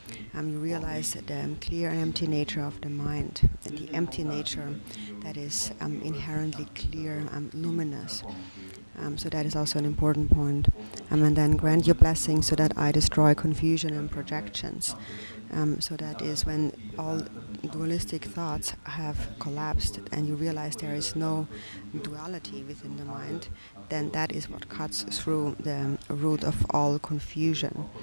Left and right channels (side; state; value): both; inverted; correlation -1.00